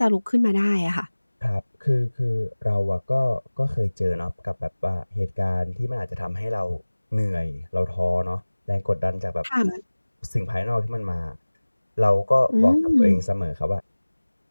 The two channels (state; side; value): inverted; both; correlation -1.00